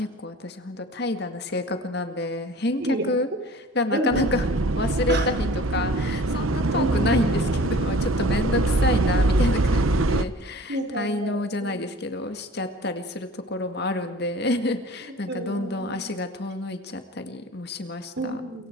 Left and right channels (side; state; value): both; normal; correlation 0.45